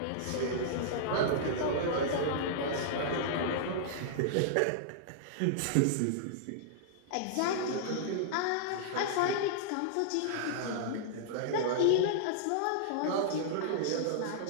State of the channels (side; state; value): both; different; correlation -0.02